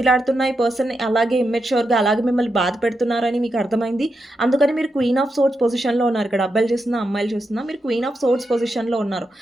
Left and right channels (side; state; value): both; normal; correlation 0.86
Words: ఈ పర్సన్ అలాగే ఇమ్మెచ్యూర్‌గా అలాగే మిమ్మల్ని బాధ పెడుతున్నారని మీకు అర్థమైంది. అందుకని మీరు క్వీన్ ఆఫ్ సోర్డ్స్ పొజిషన్‌లో ఉన్నారు. ఇక్కడ అబ్బాయిలు చూస్తున్నా, అమ్మాయిలు చూస్తున్నా మీరు క్వీన్ ఆఫ్ సోర్డ్స్ పొజిషన్‌లో ఉన్నారు.